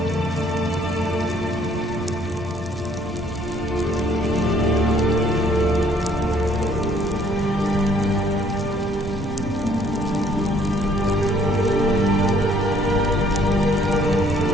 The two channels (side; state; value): both; normal; correlation 0.62